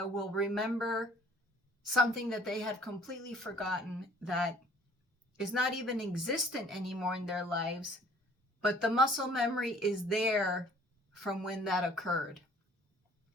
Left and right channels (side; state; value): both; normal; correlation 0.55